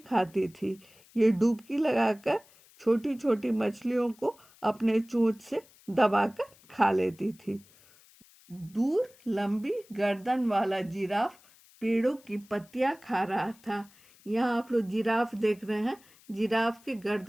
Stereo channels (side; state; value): left; noise; hiss, 27 dB below the sound